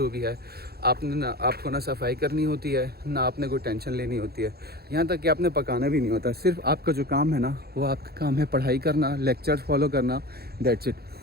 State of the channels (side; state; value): left; late; 0.46 ms